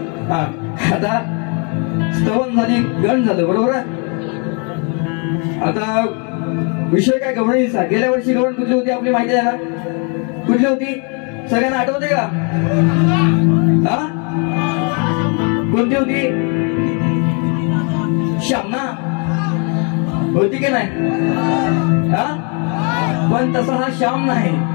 आता स्तवन झाली गण झालं बरोबर आता विषय काय गवळणीचा गेल्या वर्षी गवळण कुठली होती आपली माहिती आहे ना कुठली होती सगळ्यांना आठवते का हा कोणती होती श्यामना होती की नाही हा पण तसा हा श्याम नाही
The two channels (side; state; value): right; quieter; 36.6 dB